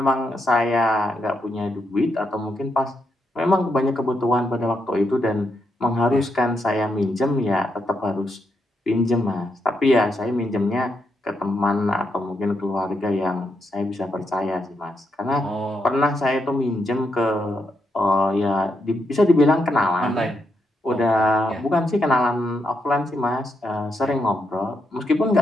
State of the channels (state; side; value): normal; both; correlation 0.81